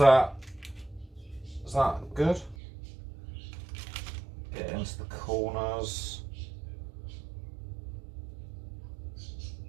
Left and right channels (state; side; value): drops out; left; at 2.6 s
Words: good? Get into the corners.